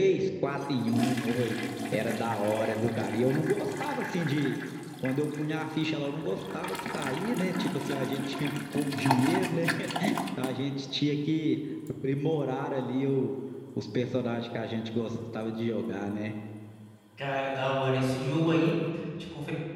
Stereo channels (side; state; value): both; identical; correlation 1.00